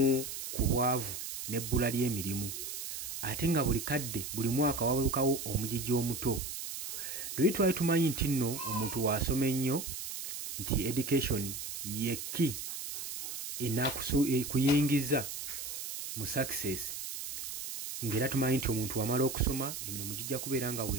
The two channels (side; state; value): right; noise; hiss, 7 dB below the sound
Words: ku bwavu n'ebbula ly'emirimu, ate nga buli kadde buli mwaka wabalukawo omugigi omuto. Luli twali tumanyi nti nno omuntu wasoma ennyo nti education yekki kuyingiza mu success, ng'era tumanyi nti omuntu wamala okusoma emirimu gijja kubeera nga